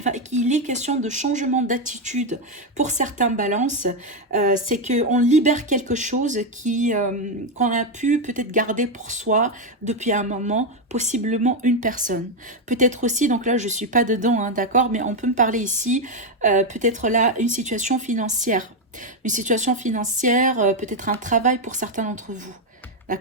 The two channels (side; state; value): both; normal; correlation 0.05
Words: est question de changement d'attitude pour certains balances. C'est qu'on libère quelque chose qu'on a pu peut-être garder pour soi depuis un moment, possiblement une personne. Peut-être aussi, donc là, je ne suis pas dedans, hein, d'accord, mais on peut me parler ici, peut-être là, une situation financière. Une situation financière, peut-être un travail pour certains d'entre vous.